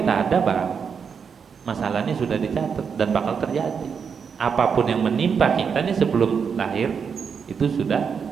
ada bang, masalah ini sudah dicatat dan bakal terjadi. Apapun yang menimpa kita nih sebelum lahir itu sudah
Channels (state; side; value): quieter; left; 6.4 dB